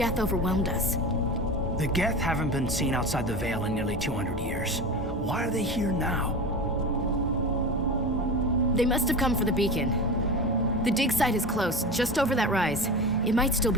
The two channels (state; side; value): normal; both; correlation 0.27